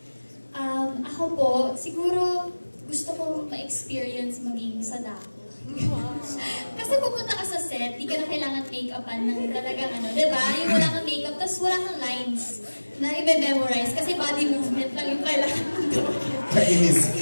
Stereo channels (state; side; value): inverted; both; correlation -1.00